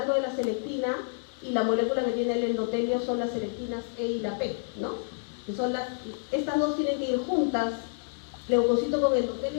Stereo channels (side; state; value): right; silent; digital silence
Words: de la selectina y la molécula que tiene el endotelio son las selectinas E y la P, ¿no? Que son estas dos tienen que ir juntas, leucocito con